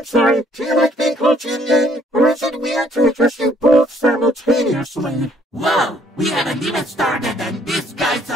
sorry, do you like being called Yin Yang? Or is it weird to address you both simultaneously? Whoa, we haven't even started and this guy's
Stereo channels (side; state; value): both; normal; correlation 0.63